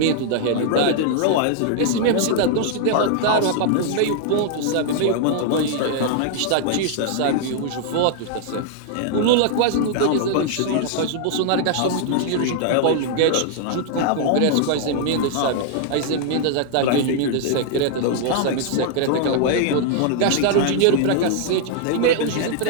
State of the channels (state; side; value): different; both; correlation 0.00